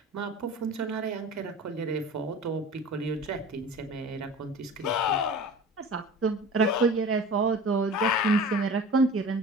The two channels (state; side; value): normal; both; correlation 0.38